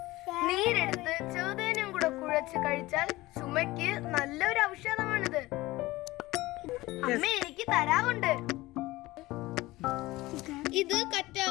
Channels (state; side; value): quieter; right; 19.2 dB